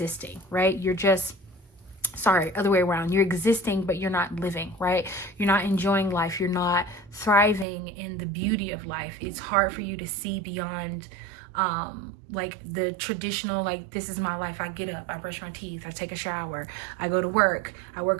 right? Other way around. You're existing, but you're not living, right? You're not enjoying life. You're not thriving in the beauty of life. It's hard for you to see beyond like the traditional, like, this is my life. I get up, I brush my teeth, I take a shower, I go to work, I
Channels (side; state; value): left; drops out; at 7.7 s